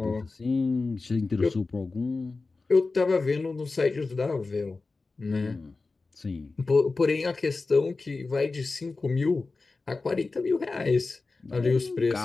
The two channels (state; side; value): quieter; right; 3.8 dB